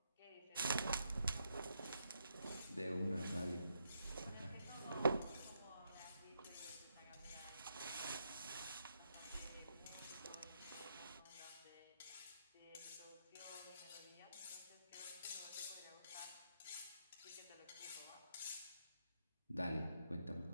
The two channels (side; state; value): both; inverted; correlation -0.79